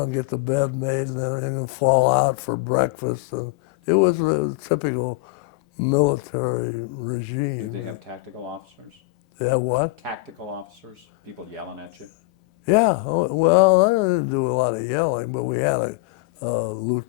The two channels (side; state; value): right; quieter; 22.8 dB